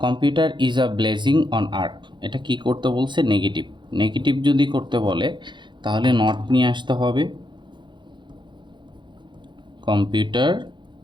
computer is a blazing on earth. এটা কি করতে বলছে? নেগেটিভ। নেগেটিভ যদি করতে বলে তাহলে নট নিয়ে আসতে হবে। কম্পিউটার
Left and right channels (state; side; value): late; left; 0.23 ms